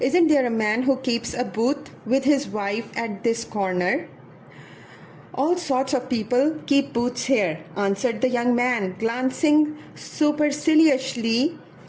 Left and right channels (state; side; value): identical; both; correlation 1.00